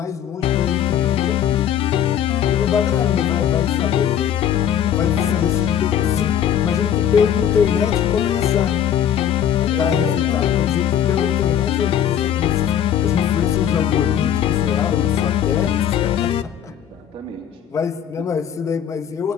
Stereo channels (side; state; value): right; quieter; 9.4 dB